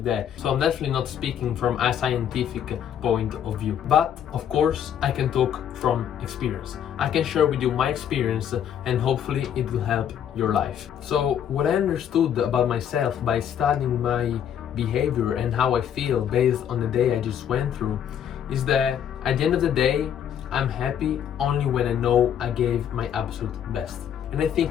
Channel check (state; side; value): quieter; right; 9.2 dB